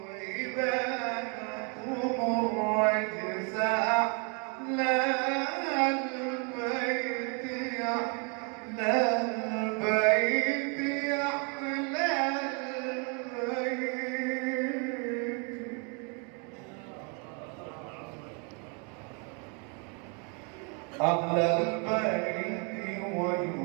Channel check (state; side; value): quieter; left; 34.5 dB